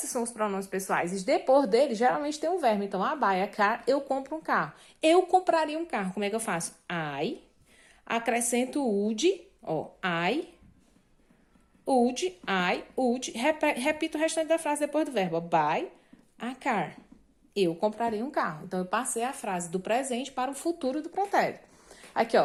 são os pronomes pessoais. E depois dele, geralmente tem um verbo. Então, I buy a car, eu compro um carro. Eu compraria um carro. Como é que eu faço? I, acrescento would, ó, I, would, repito o restante da frase depois do verbo. Buy a car. Eu compraria um carro. Então, eu passei a frase do presente para o futuro do pretérito. Aqui,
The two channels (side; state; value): both; identical; correlation 1.00